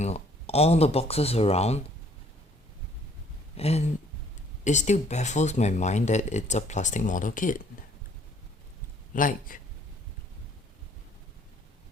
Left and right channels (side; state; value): both; normal; correlation 0.60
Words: all the boxes around, and it still baffles my mind that it's a plastic model kit. Like,